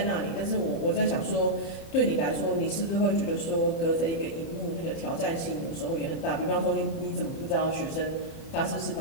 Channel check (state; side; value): late; right; 30 ms